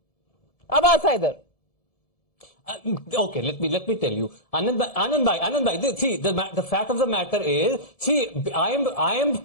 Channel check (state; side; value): late; right; 1.7 ms